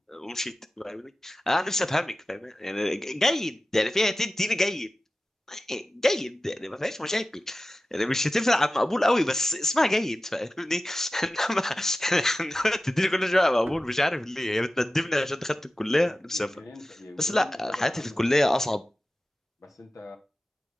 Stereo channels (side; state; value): both; normal; correlation 0.95